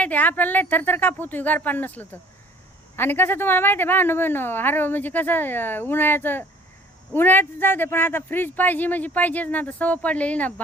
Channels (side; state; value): both; normal; correlation 0.52